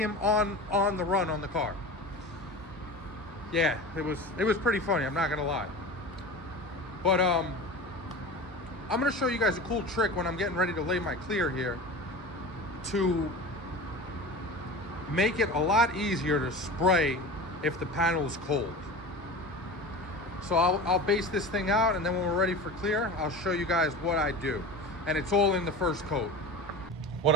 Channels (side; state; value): both; normal; correlation 0.32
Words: on the run on the car. Yeah, it was pretty funny, I'm not gonna lie. But I'm gonna show you guys a cool trick when I'm getting ready to lay my clear here to make it a lot easier to spray if the panel is cold. So I'll base this thing out, and then when we're ready for clear, I'll show you guys what I do. And it's all in the first coat. What